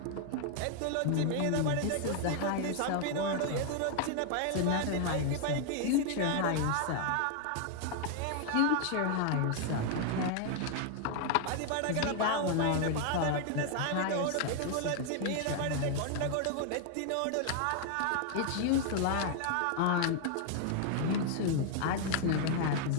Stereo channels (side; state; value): both; different; correlation 0.00